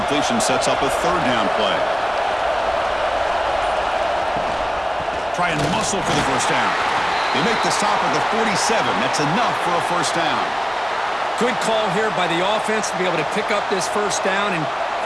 sets up a third down play. Try and muscle for the first down. They make the stop at the 47. That's enough for a first down. Good call here by the offense to be able to pick up this first down. And,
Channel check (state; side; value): identical; both; correlation 1.00